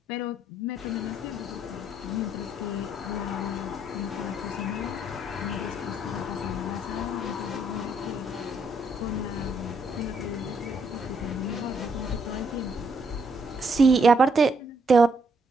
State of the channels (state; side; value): normal; both; correlation 0.72